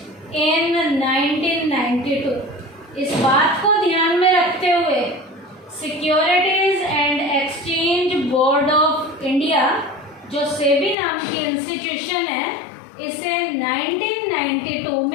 in 1992। इस बात को ध्यान में रखते हुए securities and exchange board of India, जो सेबी नाम की इंस्टीट्यूशन है, इसे 1992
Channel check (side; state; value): right; drops out; at 11.0 s